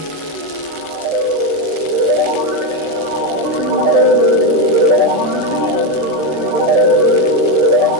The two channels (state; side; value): late; left; 13 ms